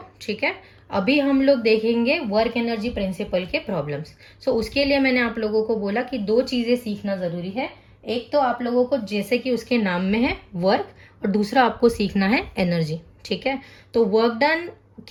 ठीक है, अभी हम लोग देखेंगे वर्क एनर्जी प्रिंसिपल के प्रॉब्लम्स। सो उसके लिए मैंने आप लोगों को बोला कि 2 चीजें सीखना जरूरी है। एक तो आप लोगों को जैसे कि उसके नाम में है वर्क, और दूसरा आपको सीखना है एनर्जी। ठीक है, तो वर्क डन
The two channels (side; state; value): both; identical; correlation 1.00